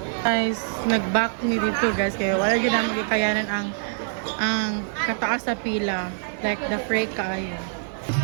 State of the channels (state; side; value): silent; left; 55 dB below the other